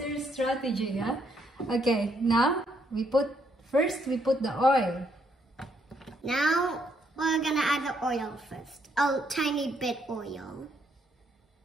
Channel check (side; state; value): both; normal; correlation 0.73